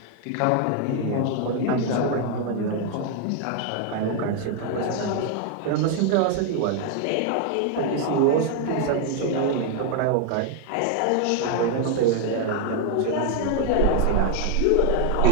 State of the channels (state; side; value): different; both; correlation 0.00